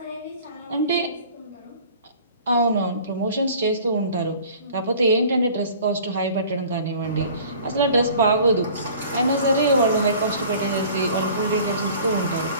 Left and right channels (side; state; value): both; inverted; correlation -0.47